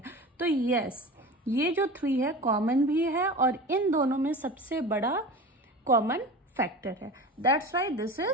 तो यस ये जो 3 है कॉमन भी है और इन दोनों में सबसे बड़ा कॉमन फैक्टर है. That's why this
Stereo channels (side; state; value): both; normal; correlation 0.33